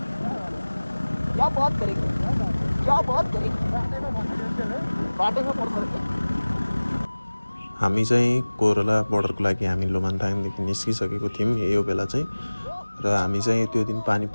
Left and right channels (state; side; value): inverted; both; correlation -1.00